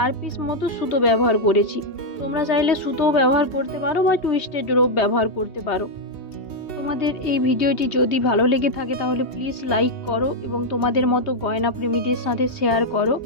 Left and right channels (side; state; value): right; late; 2.8 ms